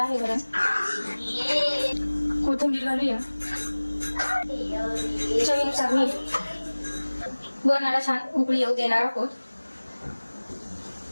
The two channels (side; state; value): both; inverted; correlation -1.00